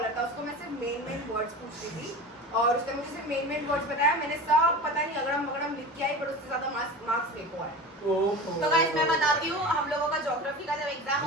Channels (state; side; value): normal; both; correlation 0.32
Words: था, उसको मैं सिर्फ मेन वर्ड्स पूछती थी और उसने मुझे सिर्फ मेन वर्ड्स बताया। मैंने सब पता नहीं अगड़म बगड़म लिख के आई, पर उससे ज्यादा मार्क्स फेंको है। तो गाइस मैं बताती हूँ, हम लोगों का ज्योग्राफी का जब एग्जाम हम